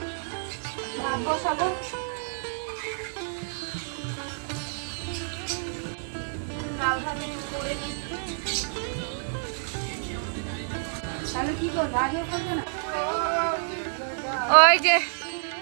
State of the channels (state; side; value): silent; left; digital silence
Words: ভাত বসাবো। ডাল ভাত একটু করে নিচ্ছি। তাহলে কি করবো, আজও করবে না? ওই যে